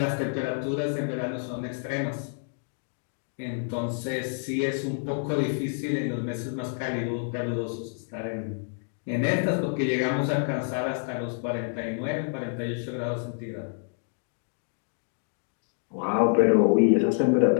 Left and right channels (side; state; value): right; silent; digital silence